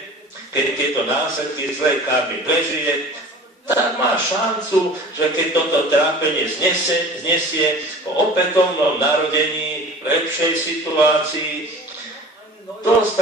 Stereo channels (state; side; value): normal; both; correlation 0.42